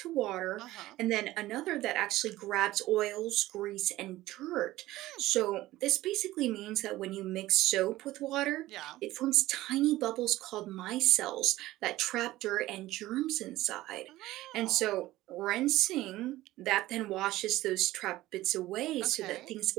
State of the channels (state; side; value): quieter; left; 16.6 dB